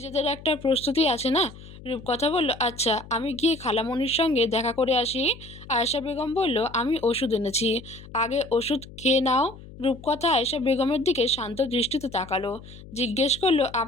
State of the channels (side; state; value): left; noise; hum, 17 dB below the sound